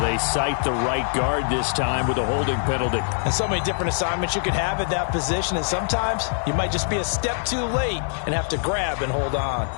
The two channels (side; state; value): right; silent; digital silence